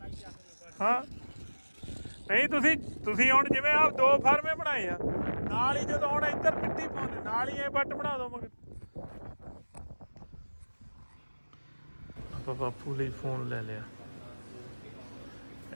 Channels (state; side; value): inverted; both; correlation -1.00